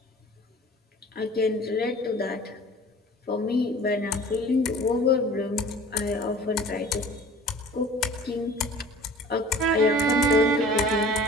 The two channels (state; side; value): normal; both; correlation 0.45